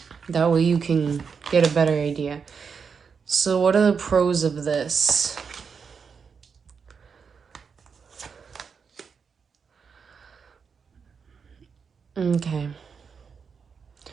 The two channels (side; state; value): left; quieter; 6.0 dB